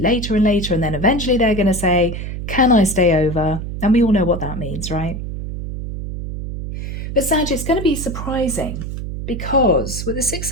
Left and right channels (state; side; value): noise; right; hum, 6 dB below the sound